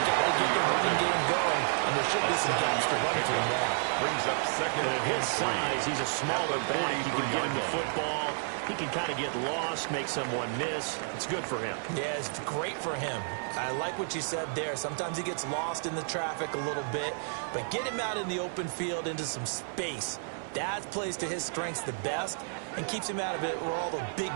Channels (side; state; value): left; silent; 57 dB below the other